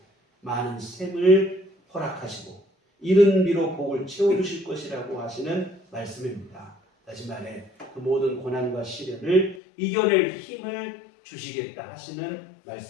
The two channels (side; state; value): right; drops out; at 9.6 s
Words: 많은 샘을 허락하시고 이른 비로 복을 채워주실 것이라고 하시는 말씀입니다. 다시 말해 그 모든 고난과 시련을 이겨낼 힘을 주시겠다 하시는